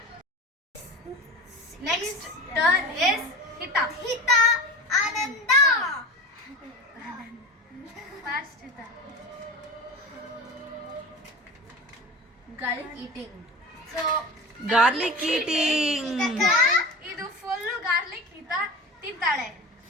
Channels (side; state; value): both; normal; correlation 0.32